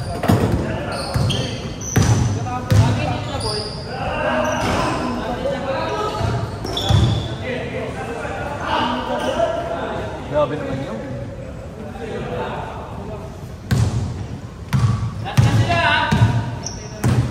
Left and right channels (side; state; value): both; identical; correlation 1.00